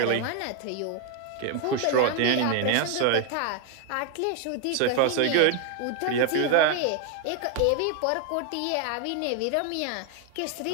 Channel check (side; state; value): both; different; correlation 0.00